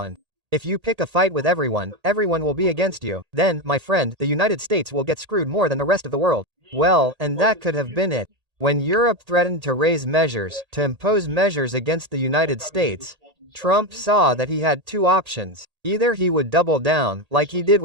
If you pick a fight with everyone, everyone will be against you. Then, my friend, the United States will get screwed more than the rest of the world. Well, and that could have been it. When Europe threatened to raise measures, to impose measures against the United States, Trump saw that he had two options. Either he would double down, like he did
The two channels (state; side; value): late; left; 1.8 ms